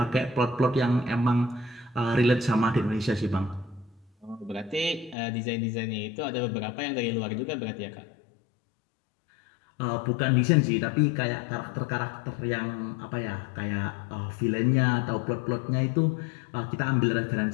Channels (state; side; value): drops out; right; at 5.2 s